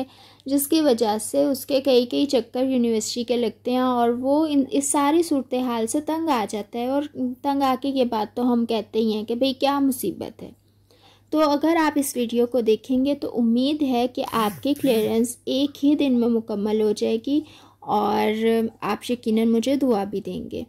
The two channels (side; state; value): both; identical; correlation 1.00